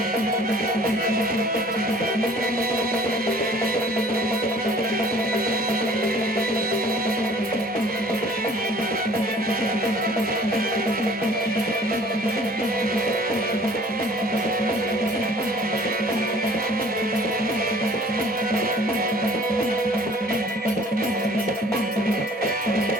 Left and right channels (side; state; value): both; normal; correlation 0.52